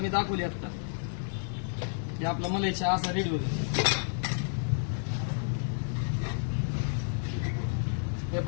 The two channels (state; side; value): silent; right; digital silence